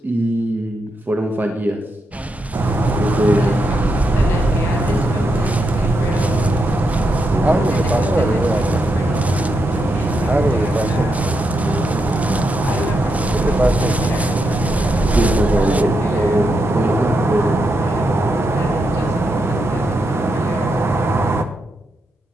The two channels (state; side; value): normal; both; correlation 0.83